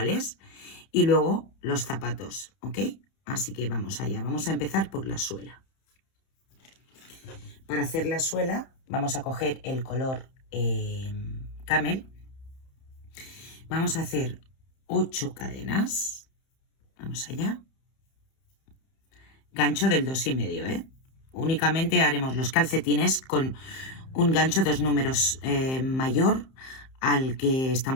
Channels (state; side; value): late; right; 31 ms